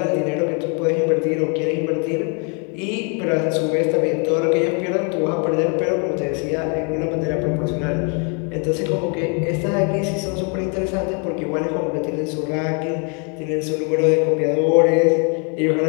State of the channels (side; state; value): right; quieter; 37.0 dB